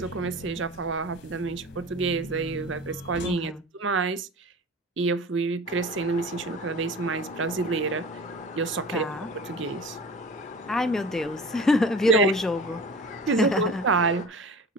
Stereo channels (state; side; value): normal; both; correlation 0.38